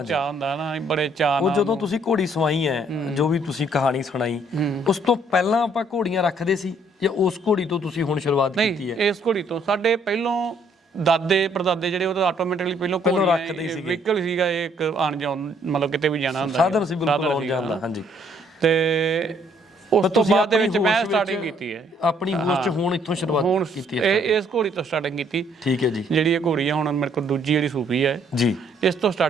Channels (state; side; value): normal; both; correlation 0.65